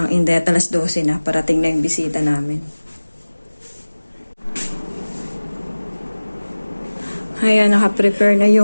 ng Inday at alas 12 na. Parating na yung bisita namin. Ayan, nakaprepare na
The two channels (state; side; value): inverted; both; correlation -1.00